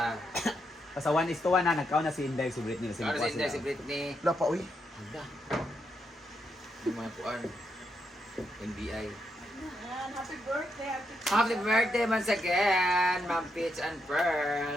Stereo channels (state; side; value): normal; both; correlation 0.81